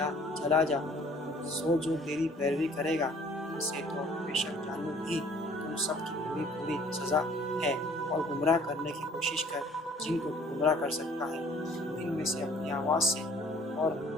چلا جا سو جو تیری پیروی کرے گا ان سے تو بے شک جانو بھی تم سب کی پوری سزا ہے اور گمراہ کرنے کی کوشش کر جن کو تو گمراہ کر سکتا ہے ان میں سے اپنی آواز سے اور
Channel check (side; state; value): both; normal; correlation 0.55